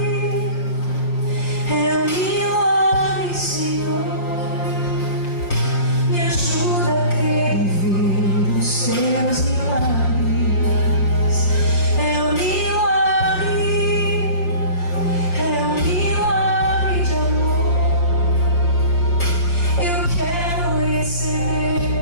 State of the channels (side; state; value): right; late; 5.8 ms